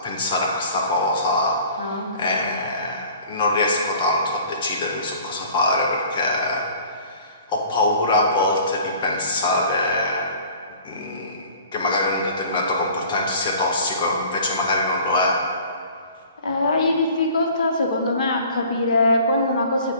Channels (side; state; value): both; inverted; correlation -0.48